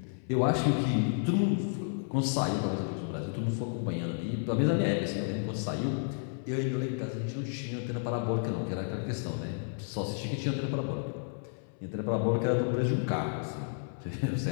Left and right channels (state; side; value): silent; right; 57 dB below the other